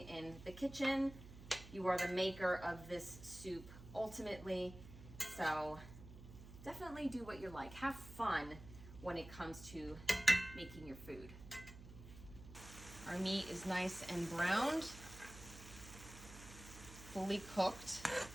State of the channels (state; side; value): noise; right; hum, 15 dB below the sound